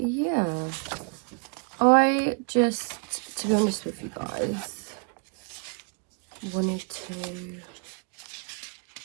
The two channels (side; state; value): left; quieter; 36.3 dB